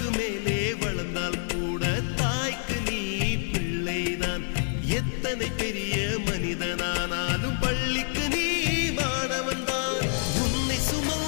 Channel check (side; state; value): right; silent; digital silence